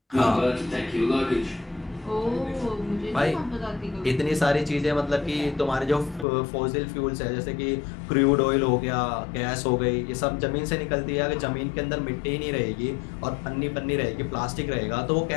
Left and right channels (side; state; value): right; drops out; at 6.2 s